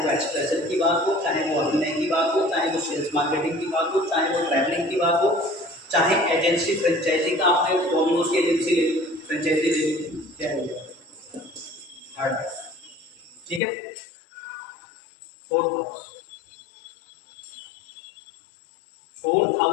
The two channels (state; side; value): drops out; right; at 13.6 s